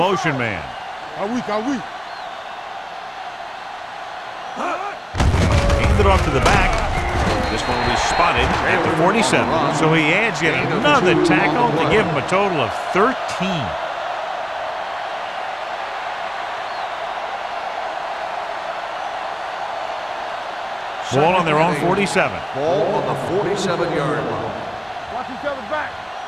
man. Are we? Hands it off to the back. This one will be spotted at the 47. So he adds yet another tackle to give him a total of 13. Ball on their own 47. Ball on the 47-yard line. Watch each other back.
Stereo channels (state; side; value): identical; both; correlation 1.00